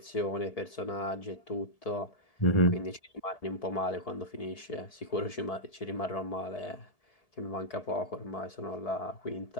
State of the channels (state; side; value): late; right; 1.7 ms